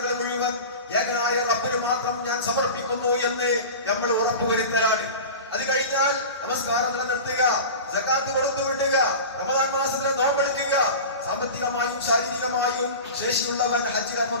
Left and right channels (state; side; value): inverted; both; correlation -0.32